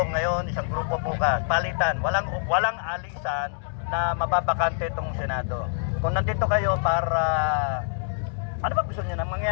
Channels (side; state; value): right; silent; digital silence